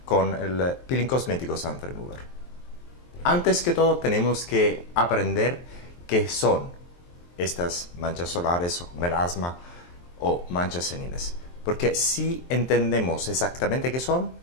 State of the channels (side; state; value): right; late; 23 ms